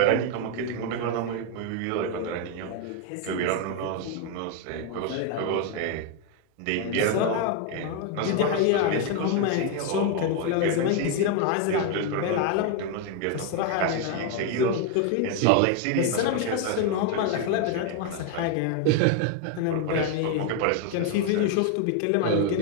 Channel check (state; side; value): different; both; correlation 0.01